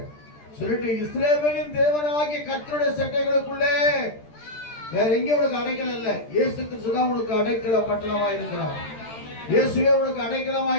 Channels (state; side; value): late; right; 13 ms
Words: சொல்லிட்டு, இஸ்ரவேலின் தேவனாகிய கர்த்தருடைய சட்டைகளுக்குள்ளே வேற எங்கே உனக்கு அடைக்கலம் இல்லை. இயேசு கிறிஸ்து தான் உனக்கு அடைக்கல பட்டணமாய் இருக்கிறார். இயேசுவே உனக்கு